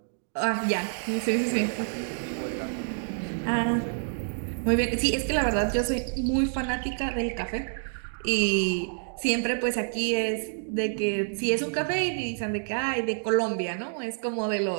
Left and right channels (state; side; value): silent; left; digital silence